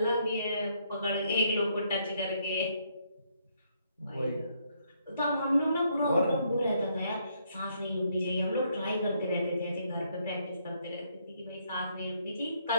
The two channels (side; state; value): both; inverted; correlation -0.72